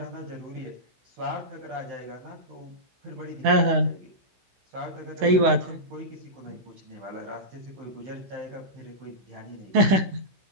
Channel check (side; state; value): left; late; 16 ms